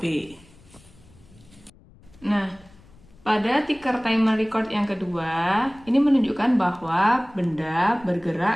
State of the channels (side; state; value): left; noise; rumble, 26 dB below the sound